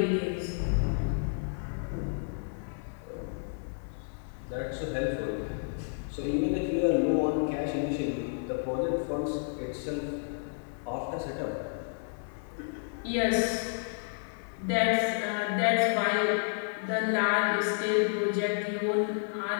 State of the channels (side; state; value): right; silent; 57 dB below the other